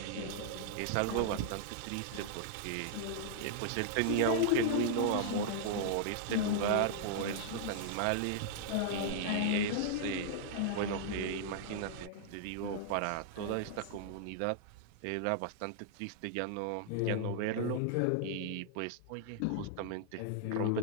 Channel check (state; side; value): different; both; correlation -0.01